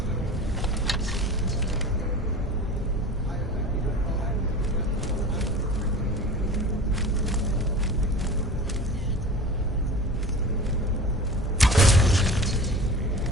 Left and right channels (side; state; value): both; normal; correlation 0.36